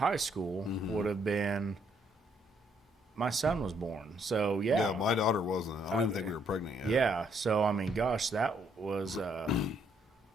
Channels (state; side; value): normal; both; correlation 0.70